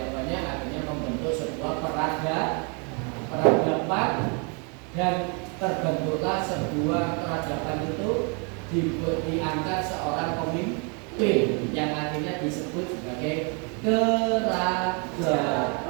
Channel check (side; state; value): left; quieter; 35.1 dB